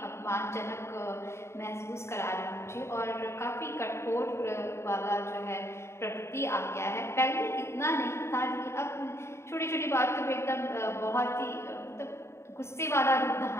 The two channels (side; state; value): right; late; 0.13 ms